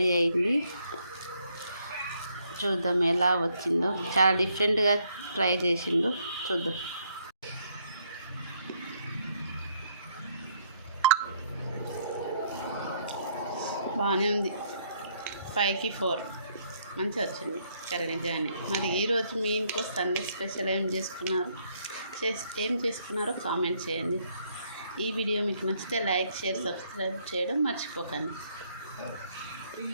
అయింది. చూద్దాం ఎలా వచ్చిందో. చాలా డిఫరెంట్గా ట్రై చేసిండు, చూద్దాం. బాగానే ఉంది, 5కి 4 మంచిగా వచ్చింది కర్రీ నిజానే. మరి ఈరోజు మీ ఇంట్లో సండే స్పెషల్ ఏం చేసుకున్నారో కామెంట్ చేయండి. ఈ వీడియో మీకు నచ్చితే లైక్, షేర్, సబ్స్క్రైబ్ చేయడం మర్చిపోకండి.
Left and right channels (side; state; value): both; inverted; correlation -0.70